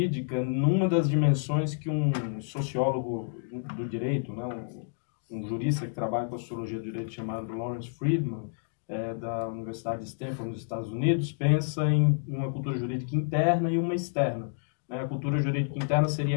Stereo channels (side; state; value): right; silent; digital silence